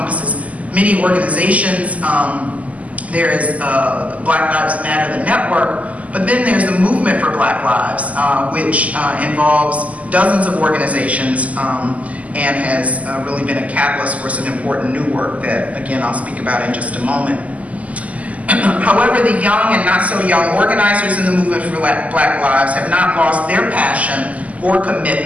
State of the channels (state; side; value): late; left; 0.071 ms